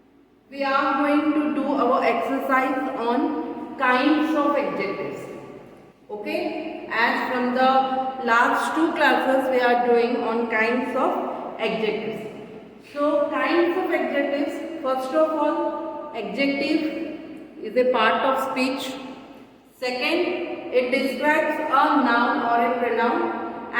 we are going to do our exercise on kinds of adjectives. Okay? As from the last two classes we are doing on kinds of adjectives. So kinds of adjectives, first of all, adjective is a part of speech. Second, it describes a noun or a pronoun,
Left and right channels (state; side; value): identical; both; correlation 1.00